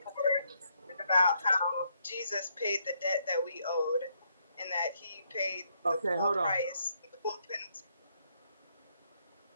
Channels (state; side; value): inverted; both; correlation -0.74